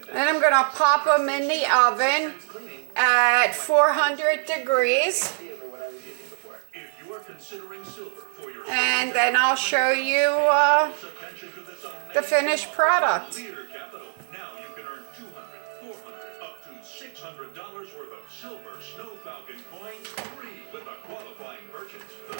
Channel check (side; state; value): left; silent; digital silence